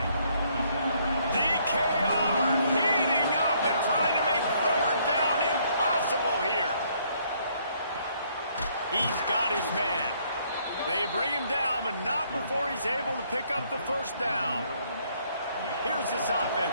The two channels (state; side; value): inverted; both; correlation -0.67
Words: DKR heating up and trying to make 3rd down impossible here. He's got his man. They bring him down, but not before he's able to pick up the 1st down. Here's this